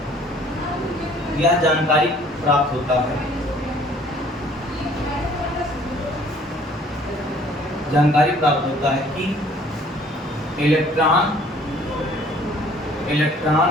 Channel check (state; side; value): normal; both; correlation 0.56